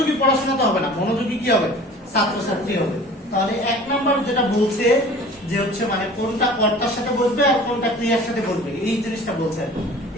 পড়াশোনা তো হবে না, মনোযোগী কি হবে? ছাত্রছাত্রী হবে। তাহলে 1 নাম্বার যেটা বলছে যে হচ্ছে মানে কোনটা কর্তার সাথে বসবে আর কোনটা ক্রিয়ার সাথে বসবে, এই জিনিসটা বলছে,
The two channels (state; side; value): normal; both; correlation 0.44